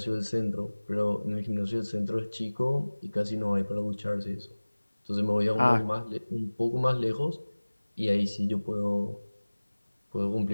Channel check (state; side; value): inverted; both; correlation -1.00